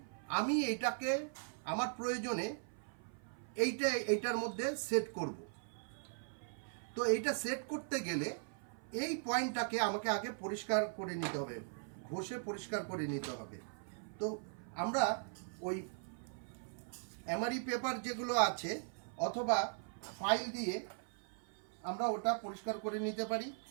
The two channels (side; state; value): left; silent; 51 dB below the other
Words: আমি এইটাকে আমার প্রয়োজনে এইটার মধ্যে সেট করব। তো এইটা সেট করতে গেলে এই পয়েন্টটাকে আমাকে আগে পরিষ্কার করে নিতে হবে, ঘষে পরিষ্কার করে নিতে হবে। তো আমরা ওই এমআরই পেপার যেগুলো আছে অথবা ফাইল দিয়ে আমরা ওটা পরিষ্কার করে নিতে পারি